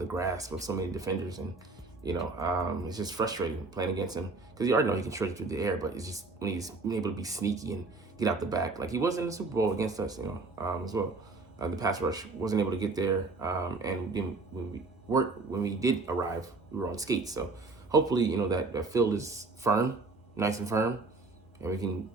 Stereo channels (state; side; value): quieter; left; 3.6 dB